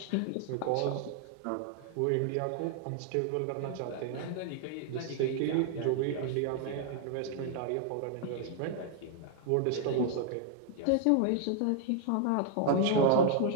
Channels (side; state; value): both; different; correlation 0.00